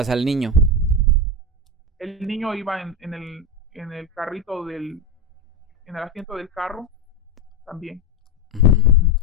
al niño? El niño iba en el carrito en el asiento del carro también.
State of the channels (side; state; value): both; normal; correlation 0.15